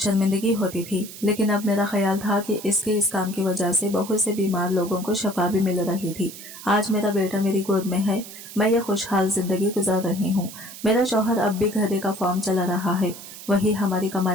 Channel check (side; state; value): right; noise; hiss, 14 dB below the sound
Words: होती थी, लेकिन अब मेरा ख्याल था कि इसके इस काम की वजह से बहुत से बीमार लोगों को शफा भी मिल रही थी। आज मेरा बेटा मेरी गोद में है, मैं ये खुशहाल जिंदगी गुजार रही हूँ। मेरा शौहर अब भी घरे का फॉर्म चला रहा है, वही हमारी